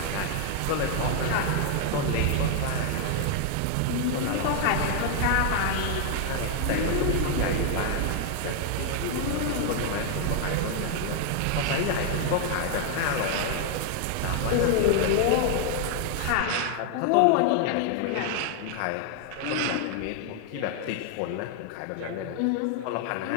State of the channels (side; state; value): both; different; correlation 0.00